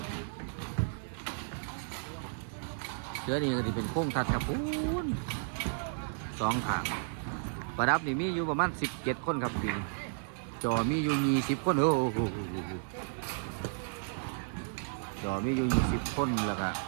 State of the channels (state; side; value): silent; left; 56 dB below the other